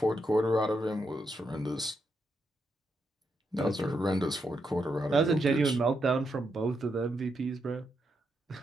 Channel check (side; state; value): both; normal; correlation 0.81